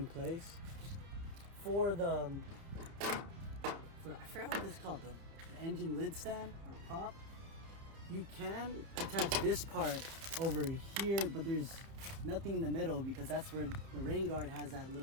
place. For the I forgot what this is called, the engine lid stand or prop, you can attach this part over here, but there's nothing in the middle because that's where the rain guard has that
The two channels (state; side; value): late; left; 30 ms